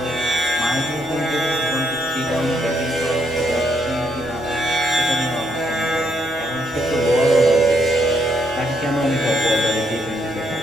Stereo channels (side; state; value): both; normal; correlation 0.74